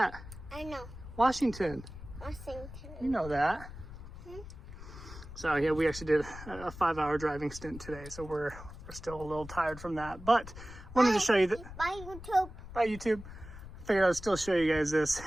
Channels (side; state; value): left; noise; rumble, 14 dB below the sound